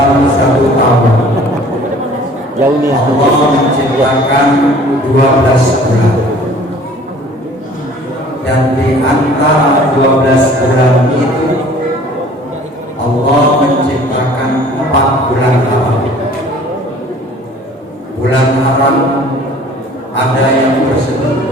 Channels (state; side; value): normal; both; correlation 0.50